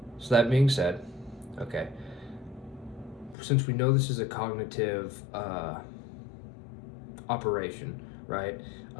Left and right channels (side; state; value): right; drops out; at 3.4 s